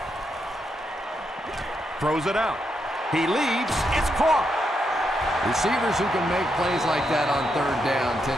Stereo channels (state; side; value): normal; both; correlation 0.81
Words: Throws it out. He leads. It's caught. Receivers who can make plays like that on third down